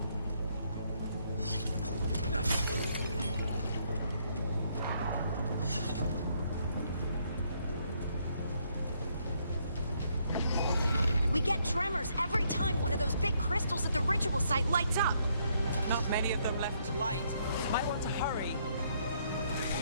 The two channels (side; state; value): both; inverted; correlation -0.71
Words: We get tremors every time one of those big crystals at the ritual site lights up. Not many of them left to light. Might want to hurry.